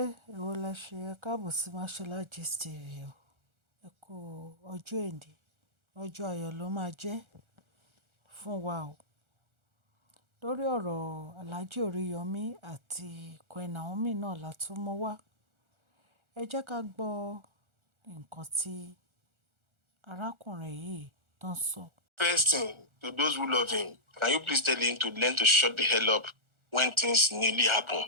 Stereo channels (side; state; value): left; late; 1.4 ms